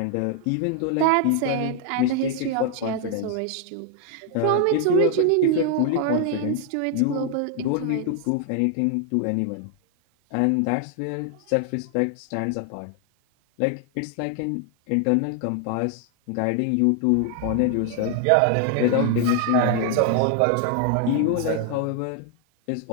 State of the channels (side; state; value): both; different; correlation 0.00